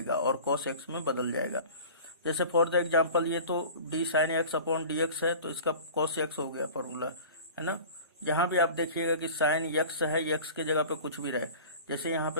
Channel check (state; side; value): inverted; both; correlation -0.40